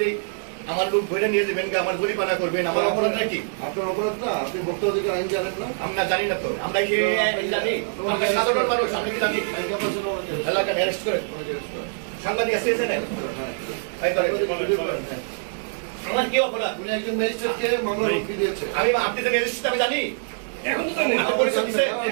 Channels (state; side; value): silent; left; 62 dB below the other